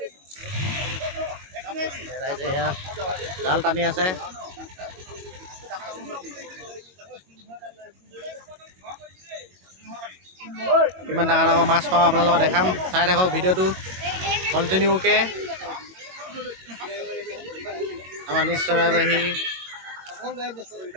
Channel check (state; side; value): late; left; 22 ms